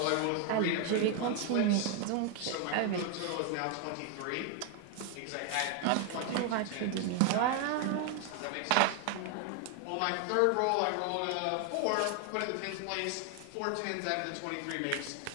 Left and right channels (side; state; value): both; different; correlation 0.00